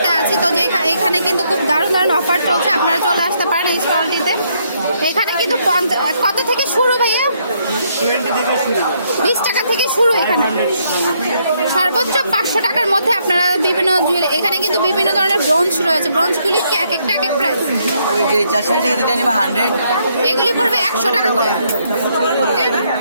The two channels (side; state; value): both; inverted; correlation -0.73